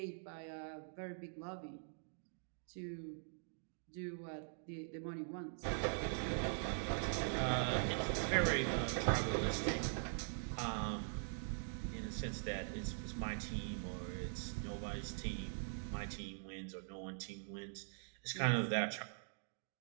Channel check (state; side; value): silent; left; digital silence